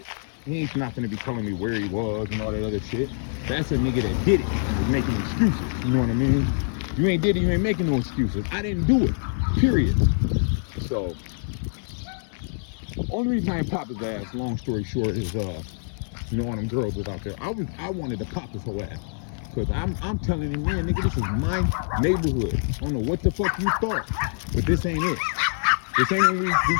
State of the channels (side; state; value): right; silent; digital silence